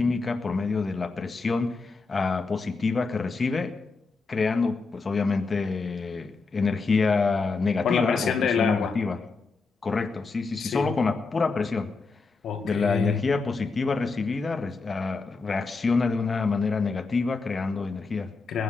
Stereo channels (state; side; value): quieter; right; 4.2 dB